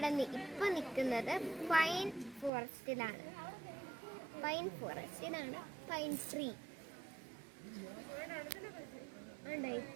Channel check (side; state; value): left; drops out; at 2.5 s